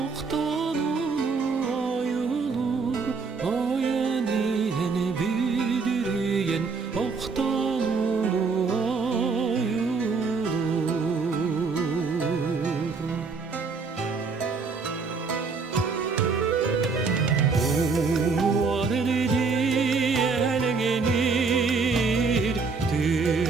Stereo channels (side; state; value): left; quieter; 4.6 dB